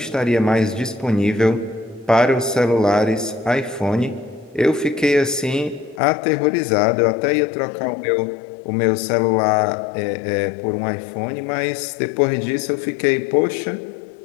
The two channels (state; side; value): drops out; right; at 6.0 s